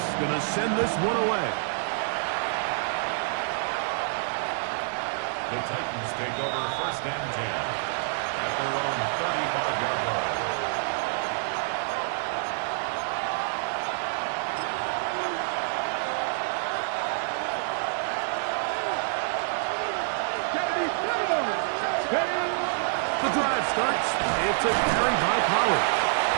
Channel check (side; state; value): left; silent; digital silence